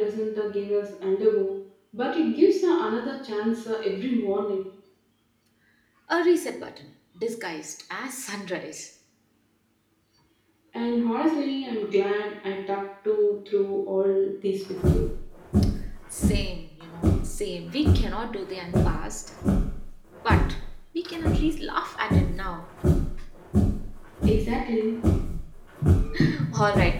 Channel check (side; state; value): both; identical; correlation 1.00